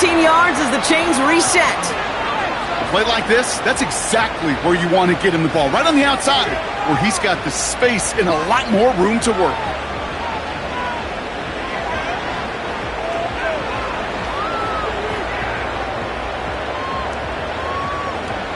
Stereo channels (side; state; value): both; identical; correlation 1.00